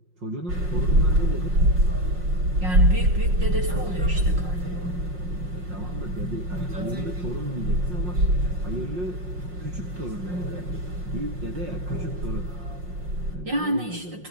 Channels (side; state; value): left; late; 5.6 ms